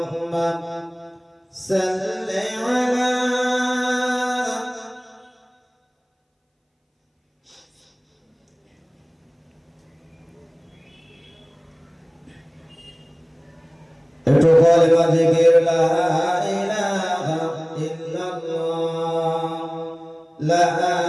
صلی علی একটু কলেমা জিকির লা ইলাহা ইল্লাল্লাহ লা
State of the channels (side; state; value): both; identical; correlation 1.00